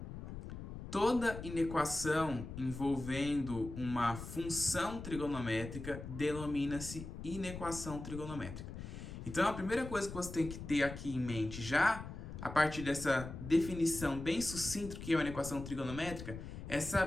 Toda inequação envolvendo uma função trigonométrica denomina-se inequação trigonométrica. Então a primeira coisa que você tem que ter aqui em mente já, a partir dessa definição bem sucinta do que é uma inequação trigonométrica, é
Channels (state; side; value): noise; left; rumble, 9 dB below the sound